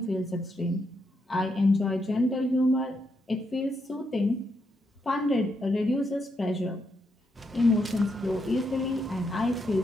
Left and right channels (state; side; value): normal; both; correlation 0.80